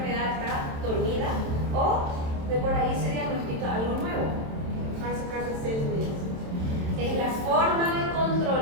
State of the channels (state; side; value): late; left; 27 ms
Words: está dormida o de por ahí se diagnostica algo nuevo. Faz a cada 6 meses. Es la forma de